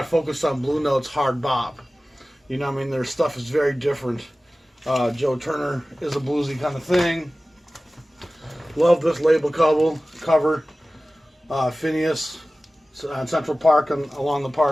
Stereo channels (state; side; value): normal; both; correlation 0.96